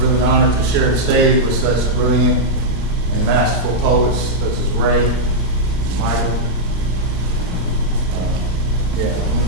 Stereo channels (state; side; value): normal; both; correlation -0.06